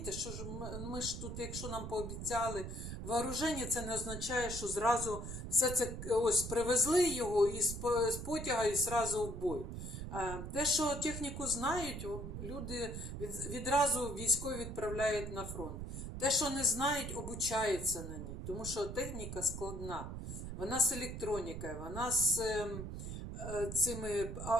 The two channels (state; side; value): noise; right; rumble, 7 dB below the sound